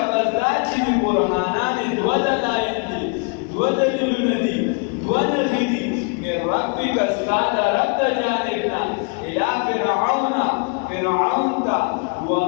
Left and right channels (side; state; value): right; quieter; 36.4 dB